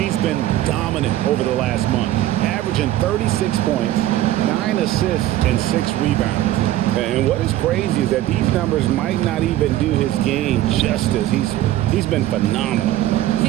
been dominant over the last month, averaging 36 points, 9 assists, and 6 rebounds. And what is crazy is that these numbers might not even do his game justice. He's been phenomenal.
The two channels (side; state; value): left; quieter; 14.1 dB